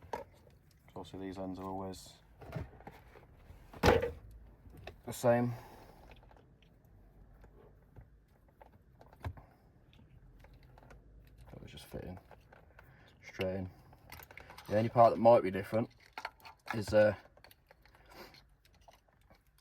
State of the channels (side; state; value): both; identical; correlation 1.00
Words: So obviously these ends are always the same. So it's just fitting straight in. The only part that might be different is